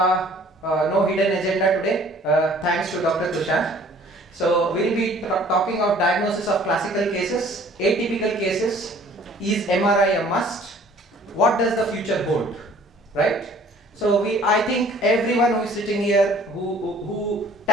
no hidden agenda today, thanks to Dr. Tushar. So we'll be talking of diagnosis of classical cases, atypical cases. Is MRI a must? What does the future hold? Right? So I think everyone who is sitting here who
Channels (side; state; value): both; normal; correlation 0.54